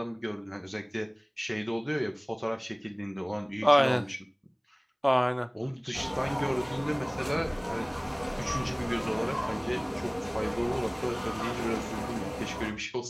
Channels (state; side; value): identical; both; correlation 1.00